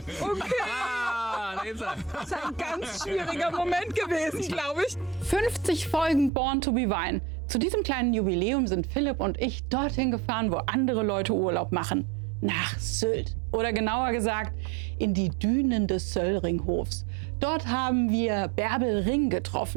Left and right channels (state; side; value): drops out; left; at 6.3 s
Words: Okay. Da ist er. Das ist ein ganz schwieriger Moment gewesen, glaube ich. 50 Folgen Born to be Wine. Zu diesem kleinen Jubiläum sind Philipp und ich dorthin gefahren, wo andere Leute Urlaub machen. Nach Sylt. Oder genauer gesagt, in die Dünen des Söllringhofs. Dort haben wir Bärbel Ring